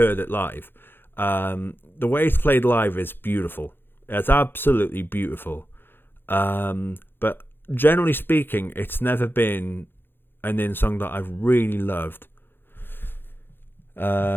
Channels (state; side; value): late; right; 0.10 ms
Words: it live. The way it's played live is beautiful. It's absolutely beautiful. But generally speaking, it's never been an in song that I've really loved.